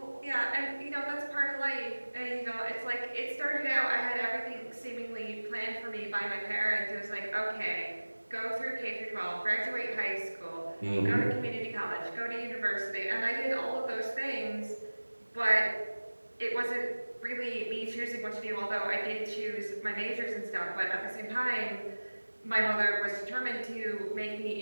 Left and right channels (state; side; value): inverted; both; correlation -1.00